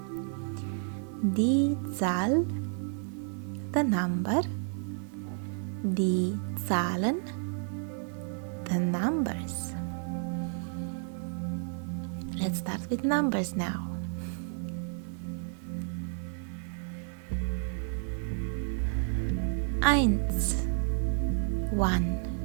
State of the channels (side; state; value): left; silent; 57 dB below the other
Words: Die Zahl, the number. Die Zahlen, the numbers. Let's start with numbers now. Eins, 1.